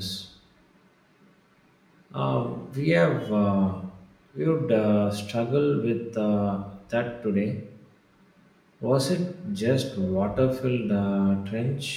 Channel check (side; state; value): both; identical; correlation 1.00